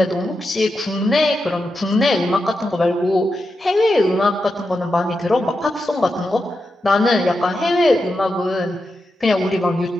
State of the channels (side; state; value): both; normal; correlation 0.88